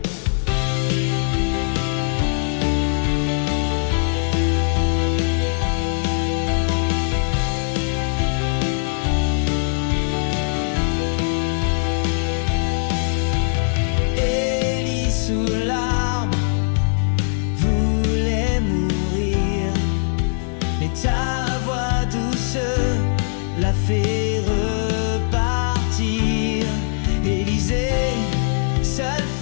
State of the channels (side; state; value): right; silent; digital silence